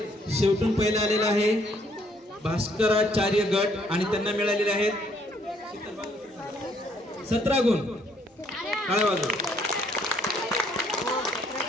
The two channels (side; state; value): both; normal; correlation 0.66